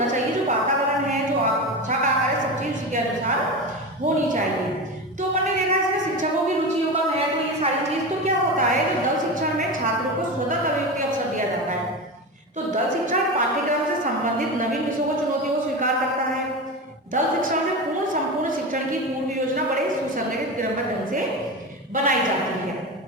चाहिए। जो वातावरण है, जो कक्षा का आकार है, सब चीज उसके अनुसार होनी चाहिए। तो अपन ने देखा इसमें शिक्षकों की रुचियों का है तो ये सारी चीज, तो क्या होता है कि दल शिक्षण में छात्रों को स्वतंत्र अभिव्यक्ति अवसर दिया जाता है। तो दल शिक्षण पाठ्यक्रम से संबंधित नवीन विषयों को चुनौतियों को स्वीकार करता है। दल शिक्षण में पूर्ण संपूर्ण शिक्षण की पूर्व योजना बड़े सुसंगठित क्रमबद्ध ढंग से बनाई जाती है,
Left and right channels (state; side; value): normal; both; correlation 0.23